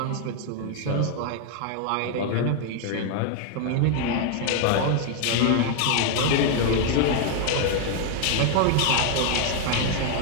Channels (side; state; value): both; different; correlation 0.00